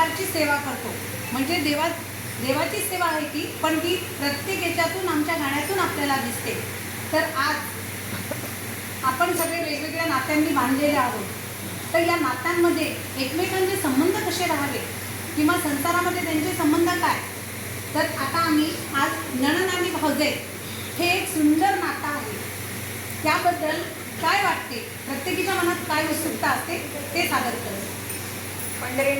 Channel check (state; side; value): identical; both; correlation 1.00